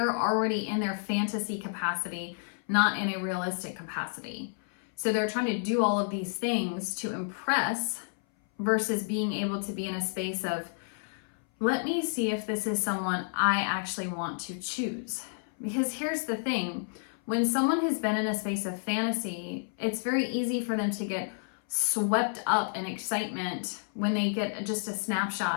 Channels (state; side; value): silent; right; 58 dB below the other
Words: already in their fantasy capacity, not in a realistic capacity. So they're trying to do all of these things to impress versus being able to be in a space of, let me see if this is someone I actually want to choose. Because here's the thing, when someone has been in a space of fantasy, it's very easy for them to get swept up in excitement when they get just a